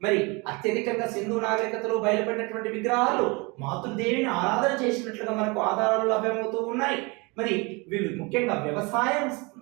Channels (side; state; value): left; quieter; 27.9 dB